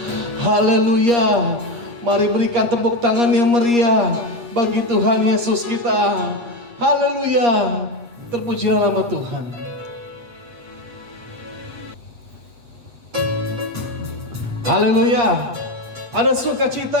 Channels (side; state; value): left; late; 8.5 ms